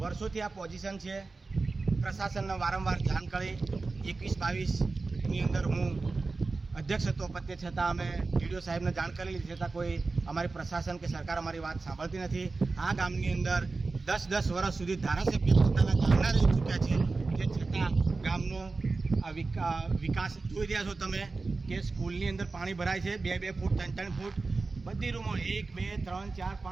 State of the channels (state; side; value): quieter; left; 3.8 dB